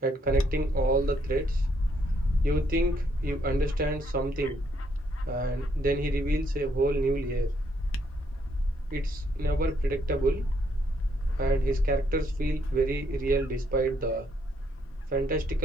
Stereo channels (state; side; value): normal; both; correlation 0.72